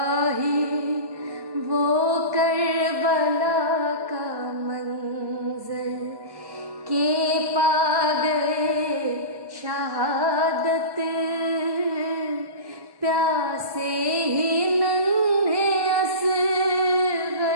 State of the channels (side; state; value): left; late; 1.1 ms